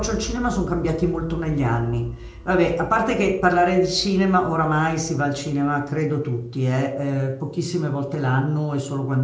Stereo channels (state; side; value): identical; both; correlation 1.00